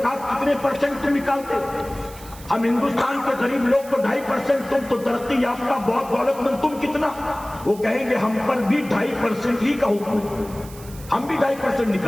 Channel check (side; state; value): right; noise; hiss, 19 dB below the sound